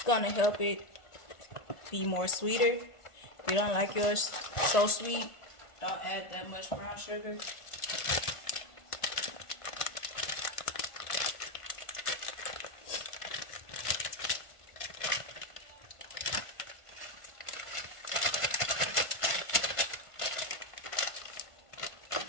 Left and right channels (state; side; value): late; right; 1.5 ms